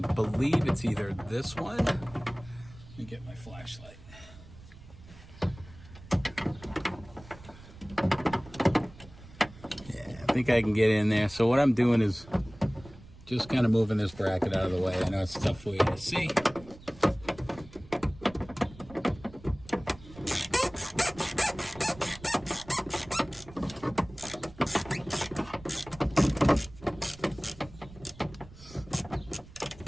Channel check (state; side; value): noise; right; rumble, 19 dB below the sound